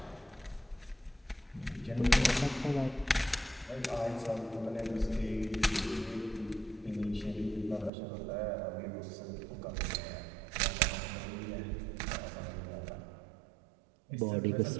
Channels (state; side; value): drops out; left; at 7.9 s